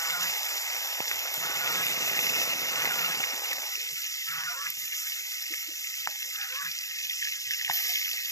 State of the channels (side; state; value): right; late; 0.16 ms